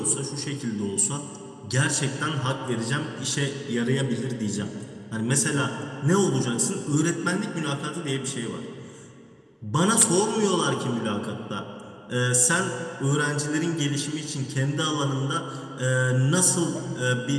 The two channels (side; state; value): both; identical; correlation 1.00